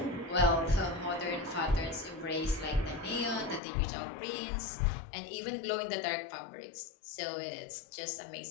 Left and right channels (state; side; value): drops out; right; at 3.6 s